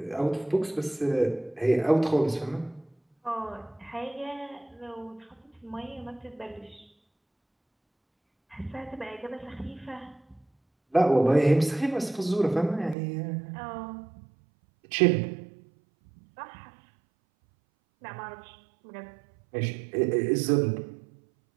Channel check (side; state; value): left; drops out; at 13.0 s